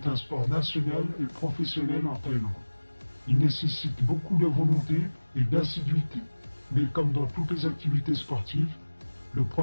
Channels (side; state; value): both; inverted; correlation -1.00